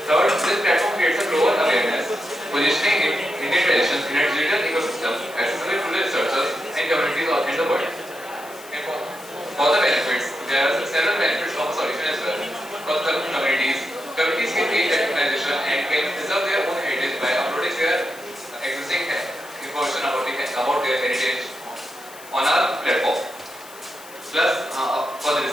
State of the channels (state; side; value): noise; left; hiss, 19 dB below the sound